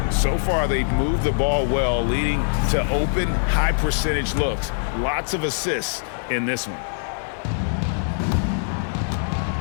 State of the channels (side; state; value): right; silent; 64 dB below the other